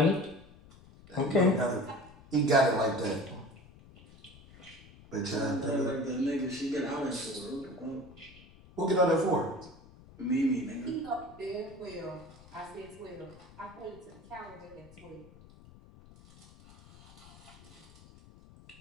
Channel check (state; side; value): noise; left; rumble, 22 dB below the sound